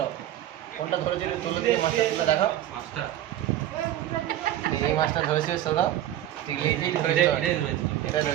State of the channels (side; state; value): left; quieter; 12.7 dB